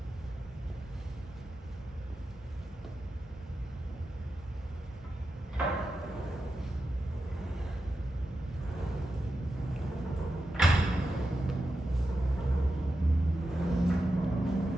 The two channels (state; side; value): normal; both; correlation 0.89